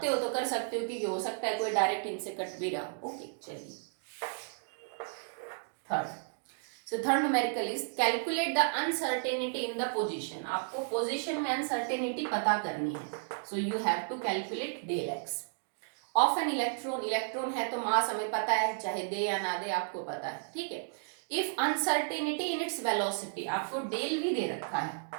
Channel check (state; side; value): silent; left; digital silence